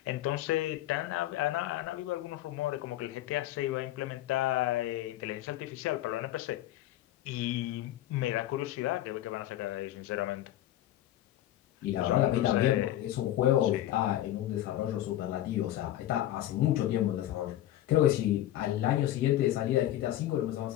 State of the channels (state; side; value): quieter; right; 13.6 dB